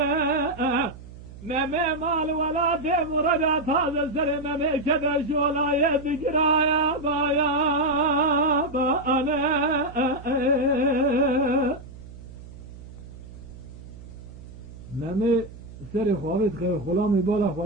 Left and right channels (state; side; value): noise; right; hum, 16 dB below the sound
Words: meme mal vela demurada taze seri meme keder şolaya dikiraya baya ba ane meme seri xavit khir khulami bala